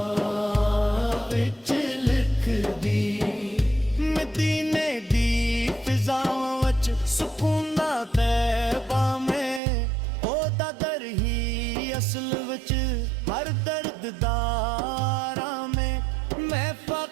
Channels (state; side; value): drops out; left; at 9.6 s